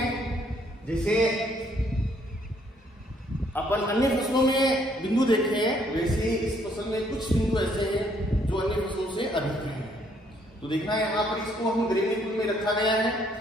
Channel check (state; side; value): normal; both; correlation 0.67